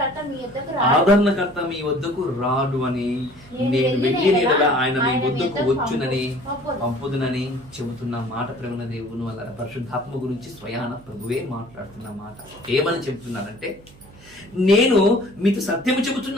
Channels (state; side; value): noise; right; hum, 23 dB below the sound